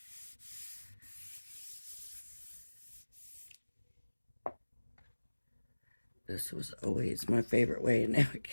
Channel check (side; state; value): both; inverted; correlation -1.00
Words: This was always my favorite way, and now I